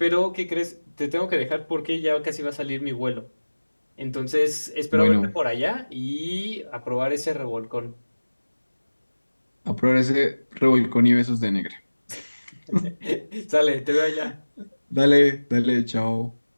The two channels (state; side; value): inverted; both; correlation -1.00